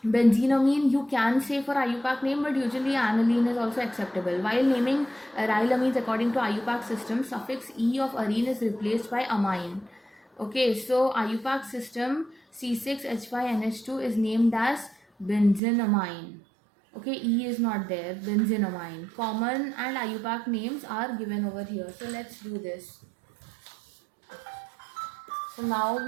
benzenamine you can say for IUPAC name, but usually aniline is also acceptable. While naming aryl amines according to IUPAC system, suffix E of arene is replaced by amine. Okay, so IUPAC system C6H5NH2 is named as benzenamine. Okay, E is not there. Benzenamine. Common and IUPAC names are given over here. So let's do this. So now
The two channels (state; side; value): drops out; left; at 15.6 s